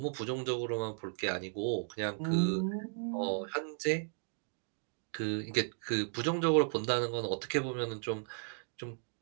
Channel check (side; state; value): left; silent; digital silence